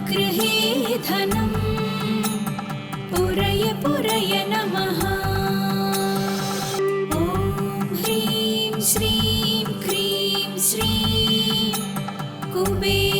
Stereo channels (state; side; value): identical; both; correlation 1.00